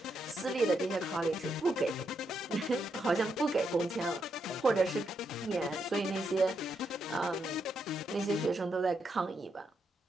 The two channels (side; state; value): both; normal; correlation 0.80